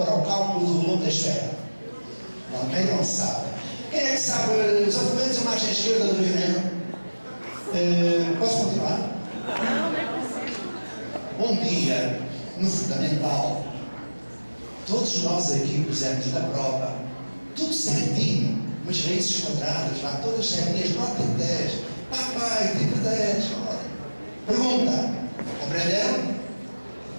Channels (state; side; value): inverted; both; correlation -1.00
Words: para o cálculo do volume da esfera? Também não sabe. Quem é que sabe os argumentos da margem esquerda do Rio Negro? Posso continuar? Um dia, no fundamental, todos nós aqui pusemos na prova, tudo certinho, umas raízes quadradas lá, todas certinhas, nota 10. Papai, tipo 10. Olha. Pergunta: aprenderam?